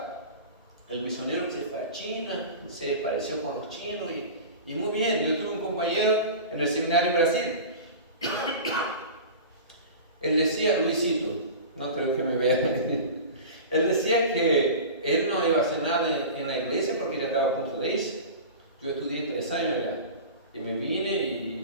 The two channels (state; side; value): inverted; both; correlation -0.33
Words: El misionero que se fue a China, se pareció con los chinos y muy bien. Yo tuve un compañero en el seminario en Brasil. Él decía, Luisito, no creo que me vea. Él decía que él no iba a hacer nada en la iglesia porque ya estaba a punto de irse. Yo estudié 3 años allá y me vine